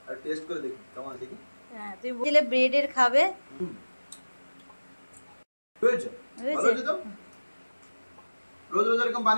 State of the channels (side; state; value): both; inverted; correlation -1.00